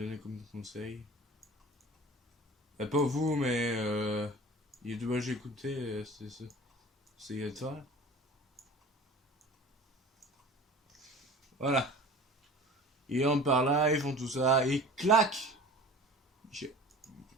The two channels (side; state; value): both; normal; correlation 0.41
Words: comme conseil. Pas vous, mais les deux que j'ai écouté, c'est de ça. Voilà. Ils rentrent par là, ils font tout ça, et clac! Guichet.